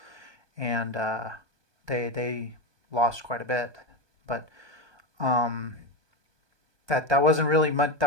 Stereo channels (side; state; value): left; late; 1.2 ms